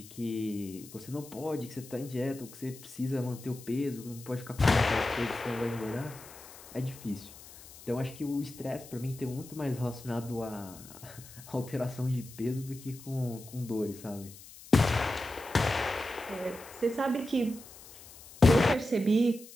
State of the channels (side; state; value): left; noise; hiss, 18 dB below the sound